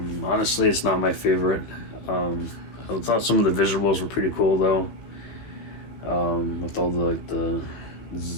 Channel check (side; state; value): right; late; 15 ms